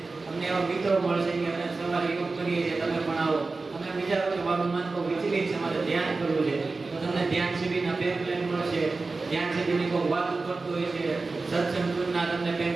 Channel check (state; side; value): quieter; left; 3.8 dB